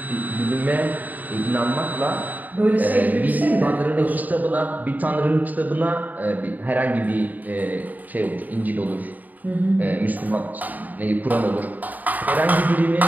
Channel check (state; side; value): late; left; 0.082 ms